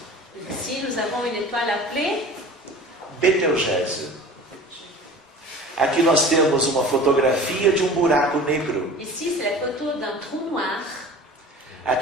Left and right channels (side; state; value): both; normal; correlation 0.40